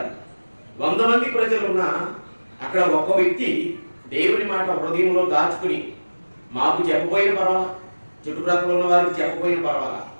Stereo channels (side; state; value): both; inverted; correlation -1.00